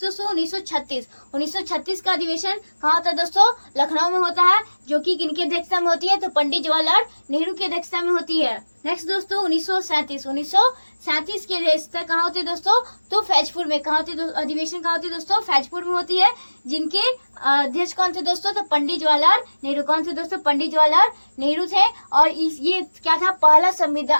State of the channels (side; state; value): both; inverted; correlation -1.00